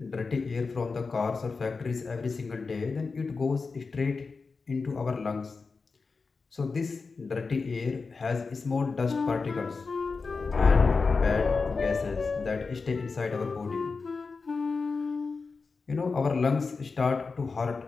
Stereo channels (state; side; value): quieter; right; 4.5 dB